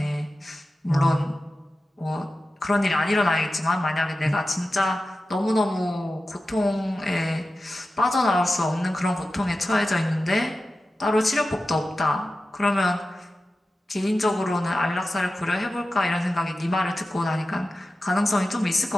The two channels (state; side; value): normal; both; correlation 0.93